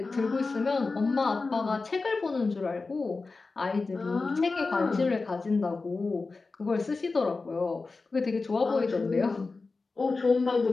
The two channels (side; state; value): right; quieter; 3.9 dB